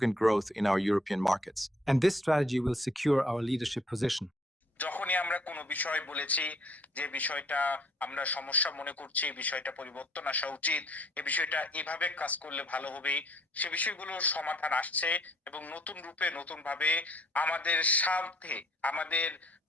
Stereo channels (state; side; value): normal; both; correlation 0.61